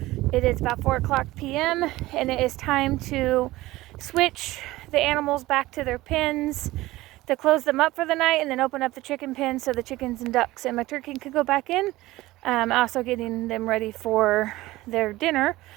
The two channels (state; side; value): quieter; left; 18.1 dB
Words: It is about 4 o'clock p.m. and it is time to switch the animals back to their pens, to close them up for the night and then open up the chicken pen so the chickens and ducks and my turkey can go back in. Also getting them ready for their dinner.